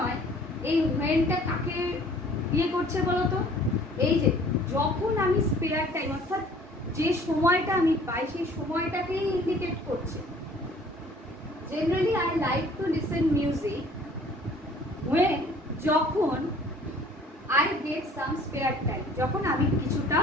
এই whenটা কাকে দিয়ে করছে বলো তো? এই যে যখন আমি স্পেয়ার টাইম অর্থাৎ যে সময়টা আমি পাই সেই সময়টাকেই ইন্ডিকেট করছে। Generally I like to listen music when, যখন I get some spare time, যখন আমি কিছুটা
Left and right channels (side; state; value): both; normal; correlation 0.53